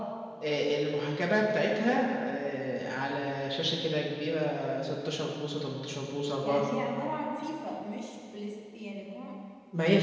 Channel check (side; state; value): both; identical; correlation 1.00